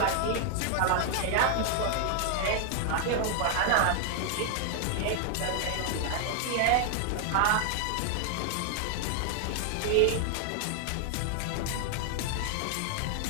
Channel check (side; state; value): both; different; correlation 0.00